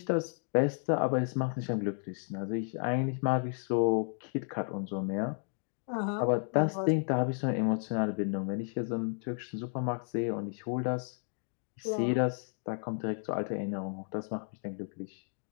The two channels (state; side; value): silent; right; 55 dB below the other